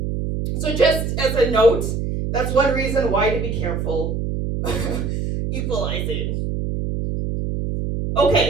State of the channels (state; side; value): noise; right; hum, 2 dB below the sound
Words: So just as a note, that's one reason why to be careful equalizing.